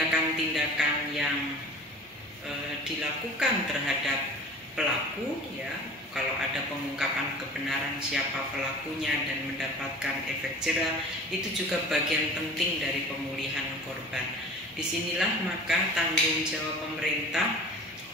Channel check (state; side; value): normal; both; correlation 0.41